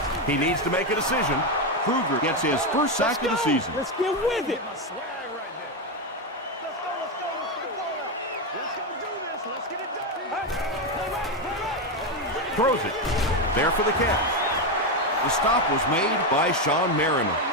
He needs to make a decision. Kruger gets his first sack of the season. Let's get with it. Throws it. There for the catch. The stop was made by Sean Mariner.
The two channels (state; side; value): normal; both; correlation 0.09